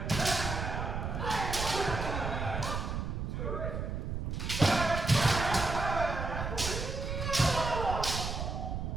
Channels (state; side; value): noise; right; rumble, 3 dB below the sound